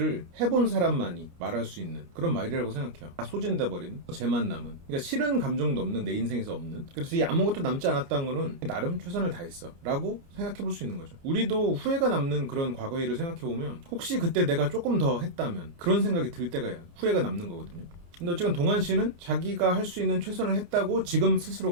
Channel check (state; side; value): late; left; 29 ms